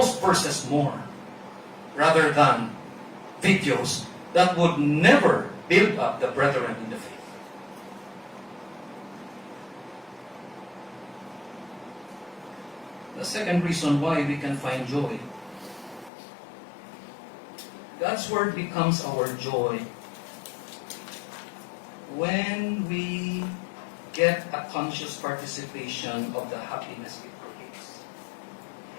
verses more rather than videos that would never build up the brethren in the faith? The second reason why we can find joy. God's Word becomes our joy when we get a conscious participation of the happiness it creates.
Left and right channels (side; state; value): right; drops out; at 16.1 s